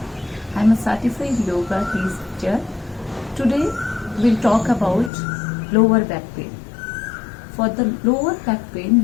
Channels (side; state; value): right; drops out; at 5.1 s